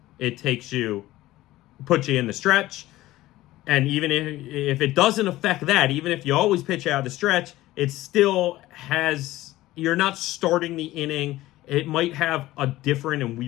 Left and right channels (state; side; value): quieter; right; 16.6 dB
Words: It puts you in the stretch, and even if it doesn't affect that, even if you always pitch out of the stretch, it still you're not starting the inning. It might have a different and